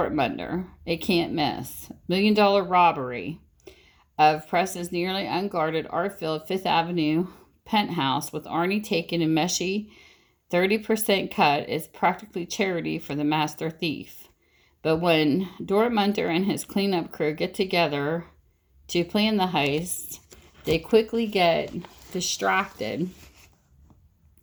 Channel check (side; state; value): both; identical; correlation 1.00